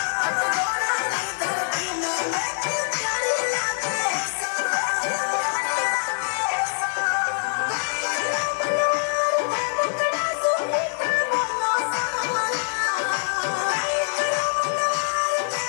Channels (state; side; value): silent; right; 62 dB below the other